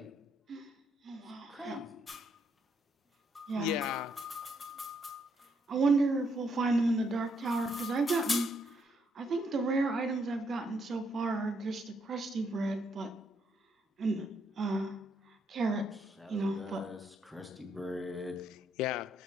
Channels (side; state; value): both; normal; correlation 0.74